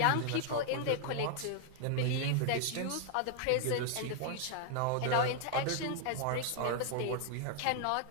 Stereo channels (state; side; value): different; both; correlation 0.00